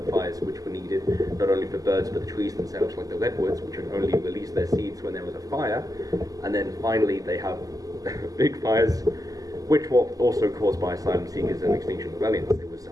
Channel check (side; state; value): left; late; 0.17 ms